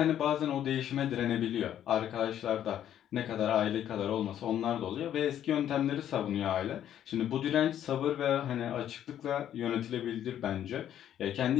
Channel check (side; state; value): right; quieter; 10.7 dB